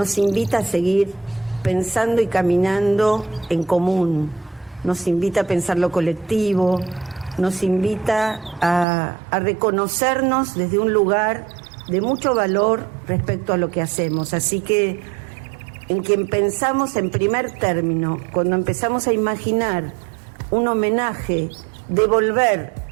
invita a seguir pensando y caminando en común, nos invita a pensar lo colectivo, nos invita a reconocernos desde un lugar de mucho valor respecto a lo que hacemos. Así que en quien pensamos en primer término, cuando empezamos a imaginar un homenaje, devolver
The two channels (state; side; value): drops out; left; at 8.8 s